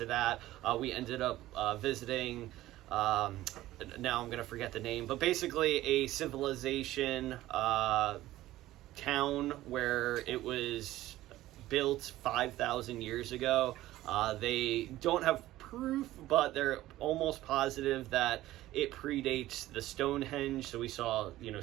that. We ended up visiting, now I'm going to forget the name, but basically a civilization town where it was built 5,000 years ago. They don't have proof, but they're almost positive that it predates the Stonehenge. So we saw,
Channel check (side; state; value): left; quieter; 15.6 dB